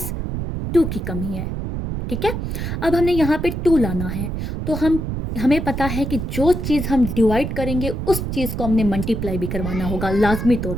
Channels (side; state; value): right; noise; rumble, 4 dB below the sound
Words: 2 की कमी है, ठीक है। अब हमने यहाँ पे 2 लाना है, तो हमें पता है कि जो चीज़ हम डिवाइड करेंगे उस चीज़ को हमने मल्टीप्लाई भी करवाना होगा लाजमी तौर